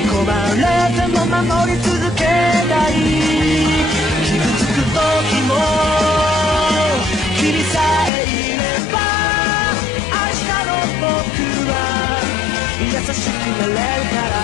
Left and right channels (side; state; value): right; drops out; at 8.1 s